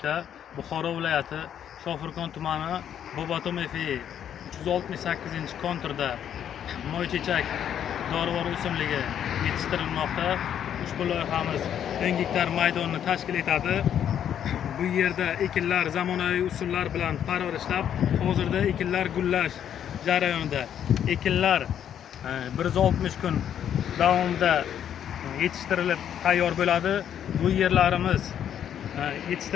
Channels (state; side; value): quieter; right; 9.5 dB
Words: Buxoro viloyati Shofirkon tumani Bobotom FI 368-konturda moychechak dorivor o'simligi yetishtirilmoqda. Ushbu loyihamiz 10 gektar maydonni tashkil etadi. Bu yerda ekinlar zamonaviy usullar bilan parvarishlab, hozirda ekinlar gullash jarayonida. Ekinlar 160 kun davomida yetishtirilib tayyor bo'ladi. Bu yerlarimiz